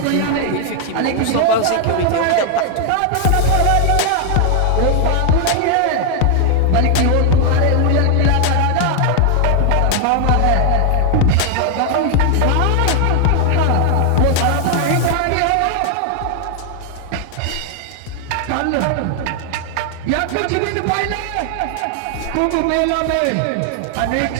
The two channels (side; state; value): both; different; correlation 0.00